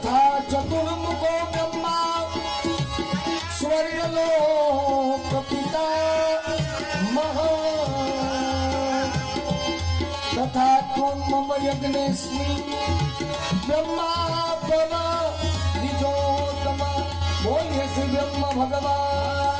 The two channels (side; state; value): both; identical; correlation 1.00